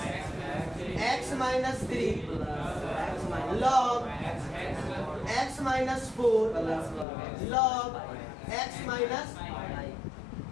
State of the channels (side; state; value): right; drops out; at 7.1 s